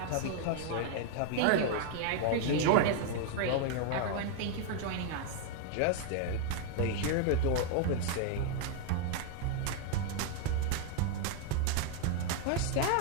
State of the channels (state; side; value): different; both; correlation 0.00